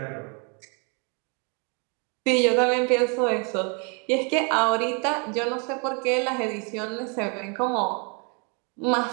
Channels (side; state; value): left; quieter; 35.7 dB